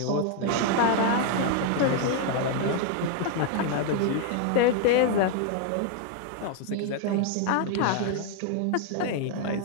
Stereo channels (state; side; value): different; both; correlation 0.00